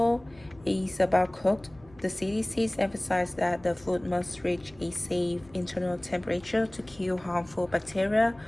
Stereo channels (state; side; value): noise; left; hum, 25 dB below the sound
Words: is about cooked. The CDCs emphasize that the food must reach a safe internal temperature to kill harmful bacteria.